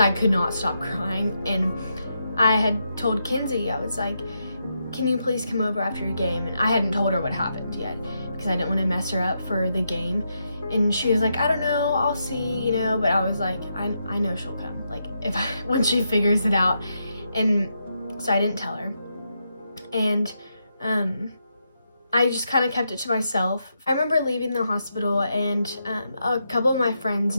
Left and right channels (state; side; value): inverted; both; correlation -0.83